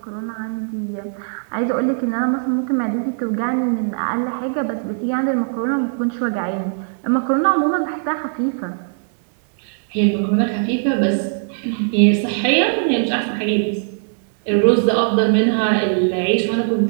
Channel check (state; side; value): silent; left; digital silence